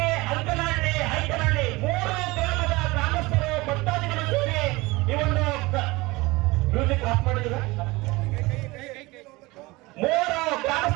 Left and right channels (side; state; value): left; quieter; 22.1 dB